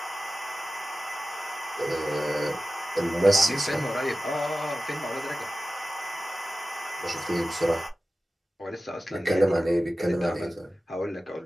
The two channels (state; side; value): normal; both; correlation 0.95